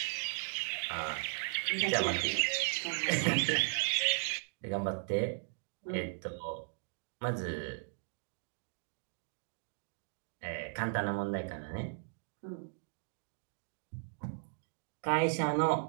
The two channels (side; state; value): left; silent; digital silence